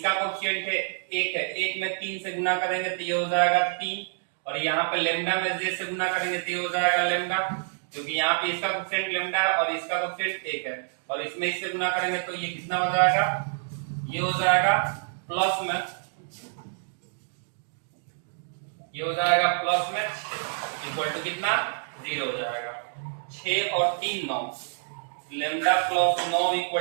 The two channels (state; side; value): silent; left; digital silence